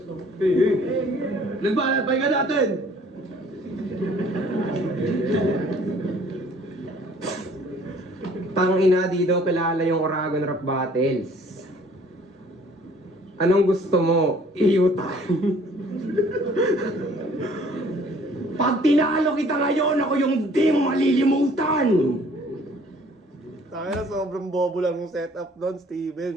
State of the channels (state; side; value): normal; both; correlation 0.56